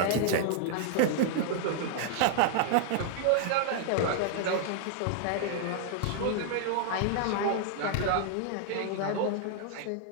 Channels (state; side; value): different; both; correlation 0.00